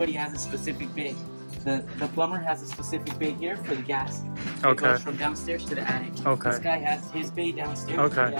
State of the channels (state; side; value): inverted; both; correlation -1.00